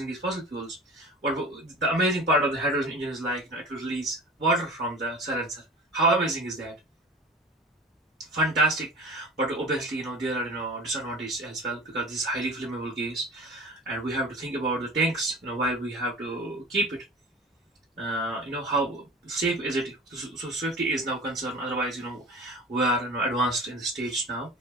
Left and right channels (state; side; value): normal; both; correlation 0.37